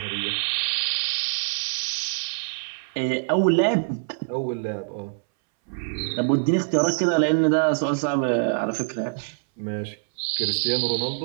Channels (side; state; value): left; silent; 62 dB below the other